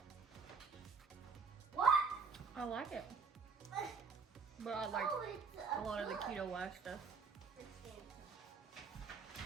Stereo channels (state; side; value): quieter; left; 5.3 dB